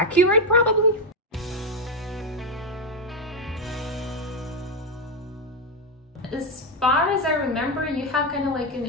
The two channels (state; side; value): normal; both; correlation 0.07